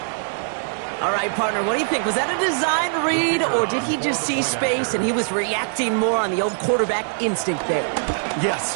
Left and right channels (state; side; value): silent; left; 63 dB below the other